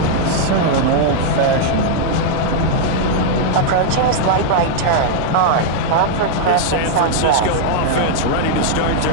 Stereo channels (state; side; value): different; both; correlation -0.01